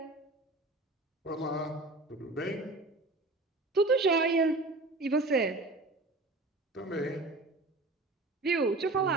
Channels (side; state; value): left; quieter; 3.0 dB